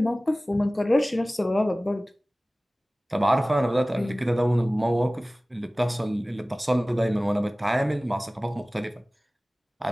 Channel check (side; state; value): both; normal; correlation 0.98